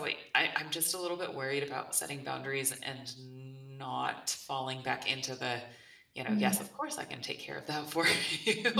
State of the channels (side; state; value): both; identical; correlation 1.00